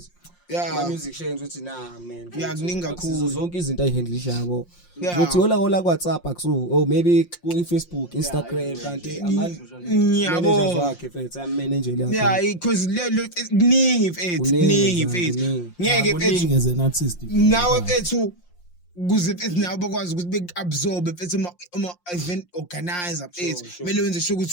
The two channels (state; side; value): late; right; 5.7 ms